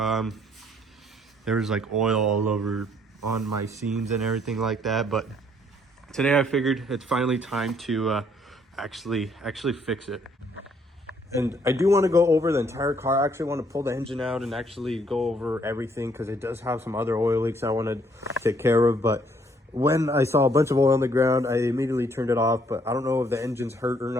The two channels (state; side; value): normal; both; correlation 0.66